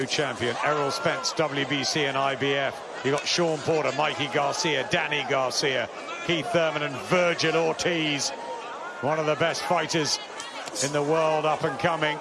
champion, Errol Spence, WBC and IBF. You got Sean Porter, Mikey Garcia, Danny Garcia, Keith Thurman and Virgil Ortiz. One of the best fighters in the world up and coming.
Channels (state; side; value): identical; both; correlation 1.00